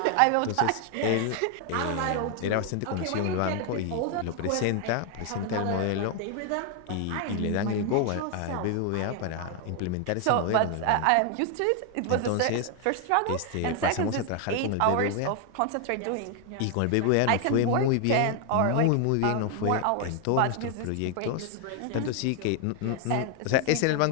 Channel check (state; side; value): different; both; correlation 0.00